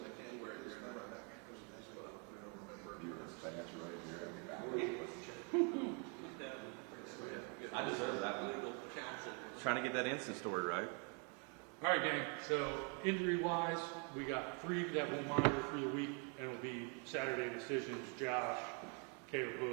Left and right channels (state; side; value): quieter; left; 33.8 dB